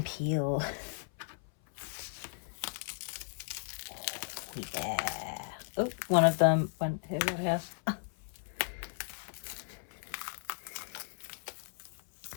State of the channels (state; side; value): silent; right; 54 dB below the other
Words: peel. Yeah. Oh, one of them went here.